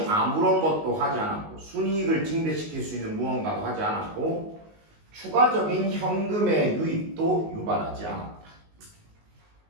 아무런 것도 하지 않았고 순이익을 증대시킬 수 있는 무언가도 하지 않았고 추가적인 현금의 유입도 유발하지 않았다.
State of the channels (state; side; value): late; left; 19 ms